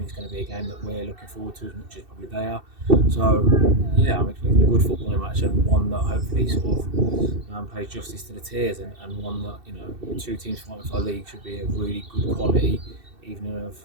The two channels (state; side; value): late; left; 2.7 ms